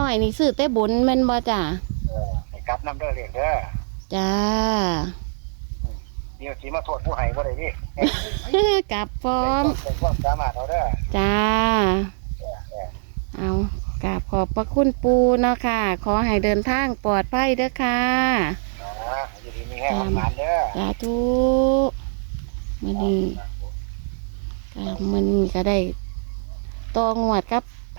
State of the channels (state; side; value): silent; left; digital silence